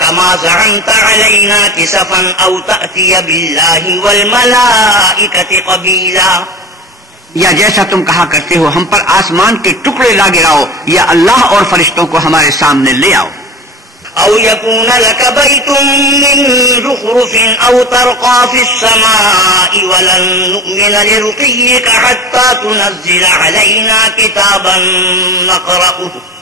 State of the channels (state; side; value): normal; both; correlation 0.31